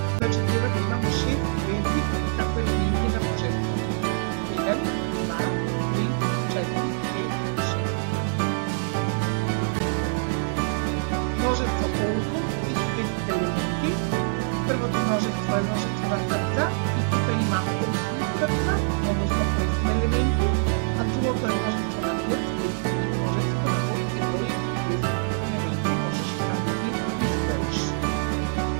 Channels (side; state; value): left; silent; digital silence